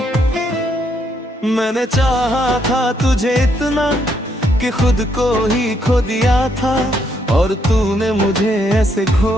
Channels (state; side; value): normal; both; correlation 0.74